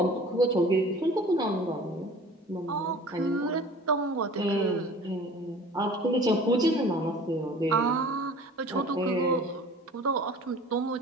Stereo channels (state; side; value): normal; both; correlation 0.45